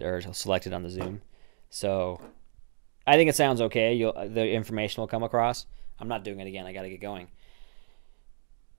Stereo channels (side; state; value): left; silent; digital silence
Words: or selected on the Zoom. So I think it sounds okay. The information will come across. I'm not doing it again. I got to get going.